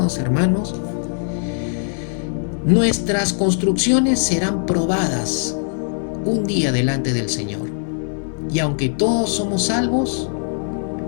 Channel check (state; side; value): silent; right; digital silence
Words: hermanos, nuestras construcciones serán probadas un día delante del Señor. Y aunque todos somos salvos,